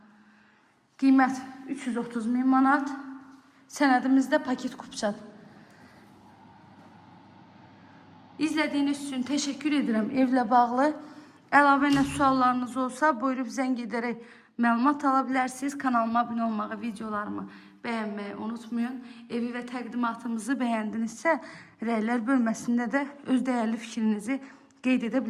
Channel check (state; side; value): identical; both; correlation 1.00